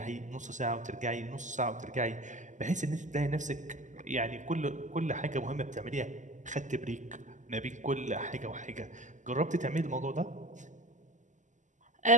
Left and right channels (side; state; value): left; late; 0.36 ms